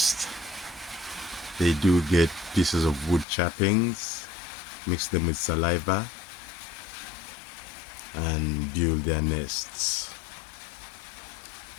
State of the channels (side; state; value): right; drops out; at 3.2 s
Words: They do get pieces of wood chappings, mix them with saliva, and build their nests.